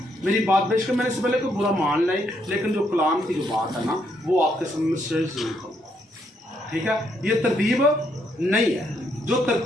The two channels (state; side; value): normal; both; correlation 0.74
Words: मेरी बात बेशक मैंने इससे पहले कोई बुरा मान लाई, लेकिन जो कलाम की जो बात है ना, वो आपके सामने शेयर जरूर करूँगा, ठीक है? ये तरतीब नहीं है। जो